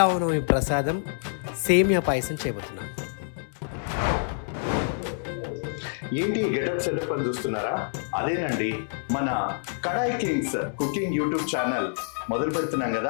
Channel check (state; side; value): silent; right; 60 dB below the other